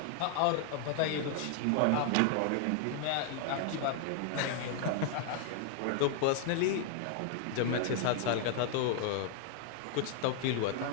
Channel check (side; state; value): both; different; correlation 0.00